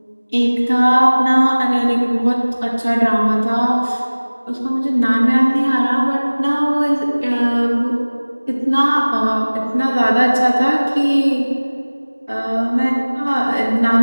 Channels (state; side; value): inverted; both; correlation -1.00